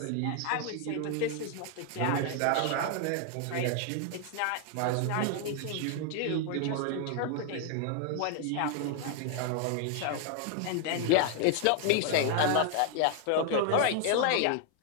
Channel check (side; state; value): both; different; correlation 0.00